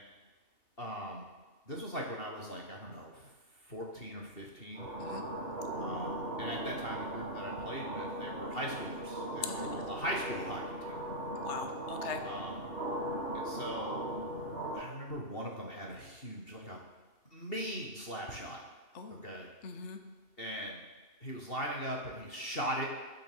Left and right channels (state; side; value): late; right; 2.8 ms